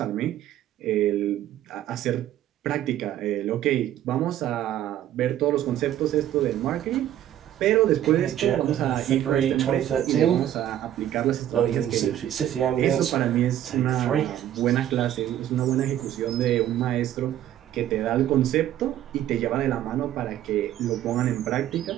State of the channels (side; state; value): left; quieter; 11.9 dB